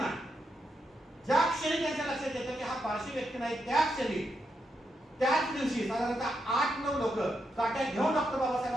ज्या क्षणी त्यांच्या लक्षात येतं की हा पारशी व्यक्ती नाही, त्या क्षणी त्याच दिवशी साधारणतः 8-9 लोक काट्या घेऊन डॉक्टर बाबासाहेब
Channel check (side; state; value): both; normal; correlation 0.83